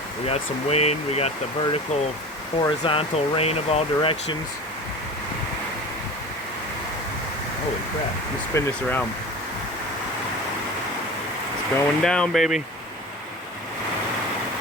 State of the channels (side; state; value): both; normal; correlation 0.35